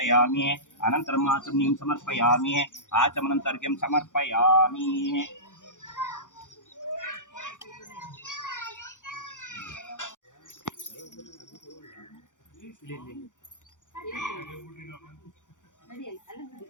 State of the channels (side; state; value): right; late; 0.87 ms